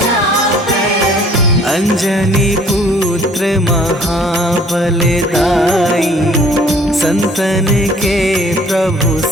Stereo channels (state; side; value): normal; both; correlation 0.56